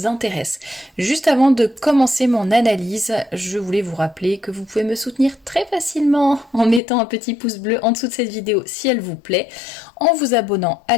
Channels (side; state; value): right; drops out; at 6.8 s